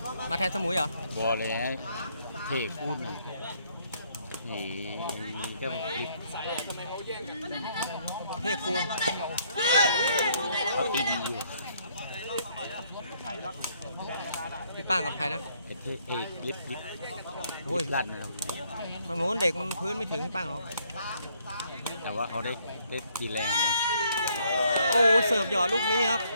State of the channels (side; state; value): both; inverted; correlation -0.69